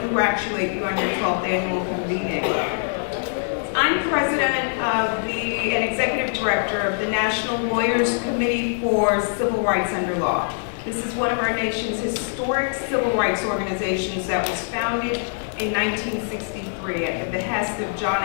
you on your 12th annual convening. I'm president and executive director of the National Lawyers Committee for Civil Rights Under Law. This is one of our nation's historic civil rights organizations that was founded in 1963 at the behest of John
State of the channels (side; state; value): right; silent; 63 dB below the other